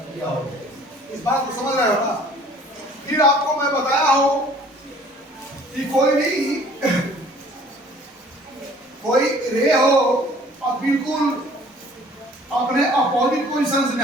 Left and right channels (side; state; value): both; normal; correlation 0.53